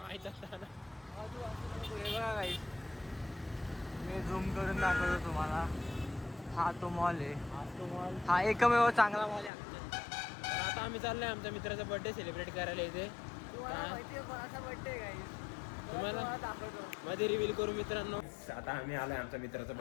असताना हे बघा गाईस, मी झूम करून दाखवतो तुम्हाला. हा तो मॉल आहे. हा एकमेव चांगला मॉल आहे आमच्या. तर आता आम्ही चाललो आहे आमच्या मित्राचा बड्डे सेलिब्रेट करायला इथे. तुम्हाला मध्ये रिव्हील करू मित्रांनो. आता आम्ही आलोय आमच्या मित्राचा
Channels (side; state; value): right; drops out; at 9.5 s